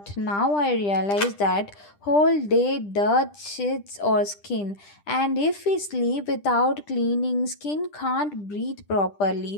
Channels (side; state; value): right; late; 10 ms